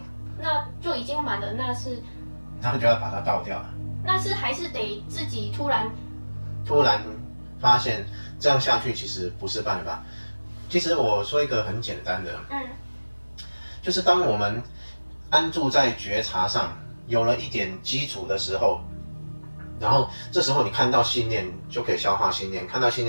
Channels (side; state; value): both; inverted; correlation -1.00